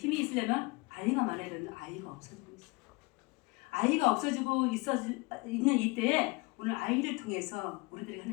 있으려면 아이가 많아야 되는데 아이가 없어지고 있어요. 아이가 없어지고 있는 이때에 오늘 아이를 통해서 우리들이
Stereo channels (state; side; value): quieter; right; 26.0 dB